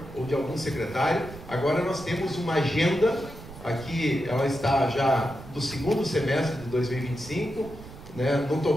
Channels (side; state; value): right; noise; rumble, 15 dB below the sound